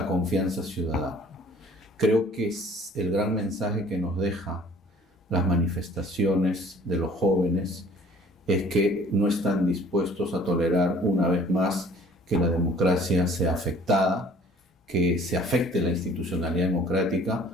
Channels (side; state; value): both; normal; correlation 0.52